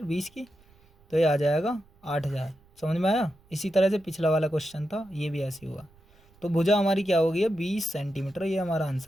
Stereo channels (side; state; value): right; noise; rumble, 29 dB below the sound